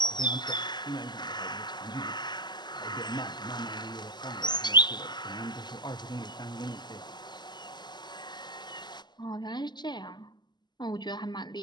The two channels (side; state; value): right; late; 0.21 ms